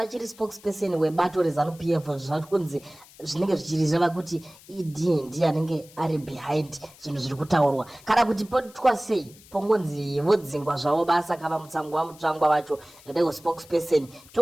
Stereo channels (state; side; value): noise; left; hiss, 23 dB below the sound